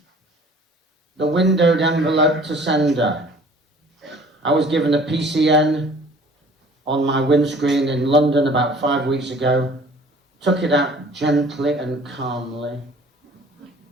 the windowed envelope to sender. I was given a PCN on my windscreen in London about 5 weeks ago. Took it out gently and calmly,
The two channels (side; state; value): both; normal; correlation 0.51